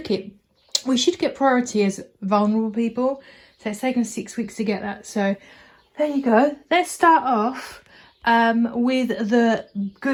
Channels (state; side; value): identical; both; correlation 1.00